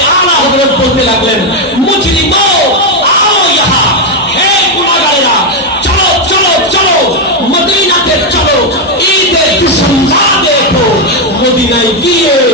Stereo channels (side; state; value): both; normal; correlation 0.04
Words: আলা হযরত বলতে লাগলেন মুজরিমো आओ यहाँ, হে গুনাহগারেরা চলো চলো চলো মদিনাতে চলো, ঈদের দুশমনা দেখো। মদিনায় গিয়ে